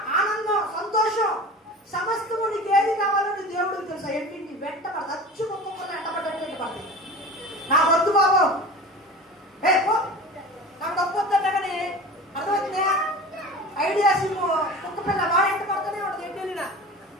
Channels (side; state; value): both; normal; correlation 0.35